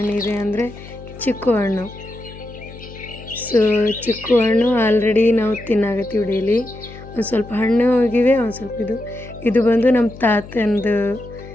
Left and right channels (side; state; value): left; noise; hum, 16 dB below the sound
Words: ಅಂದರೆ ಚಿಕ್ಕು ಹಣ್ಣು. ಸೊ ಚಿಕ್ಕು ಹಣ್ಣು ಆಲ್ರೆಡಿ ನಾವು ತಿನ್ನಾಗತ್ತೀವಿ ಡೈಲಿ. ಒಂದು ಸ್ವಲ್ಪ ಹಣ್ಣು ಹೋಗಿವೆ, ಒಂದು ಸ್ವಲ್ಪ ಇದು ಬಂದು ನಮ್ಮ ತಾತಂದು